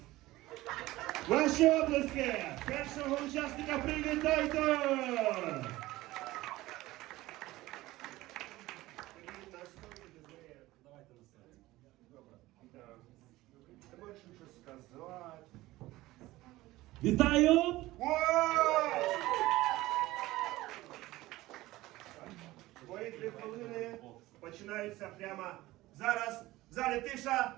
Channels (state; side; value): quieter; left; 17.9 dB